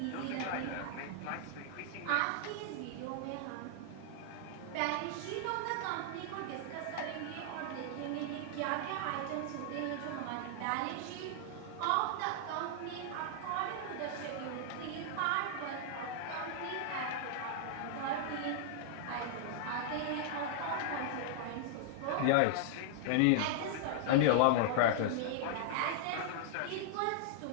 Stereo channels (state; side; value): different; both; correlation -0.01